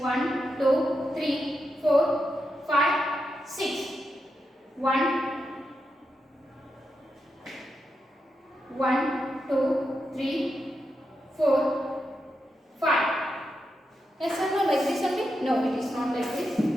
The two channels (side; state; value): both; normal; correlation 0.86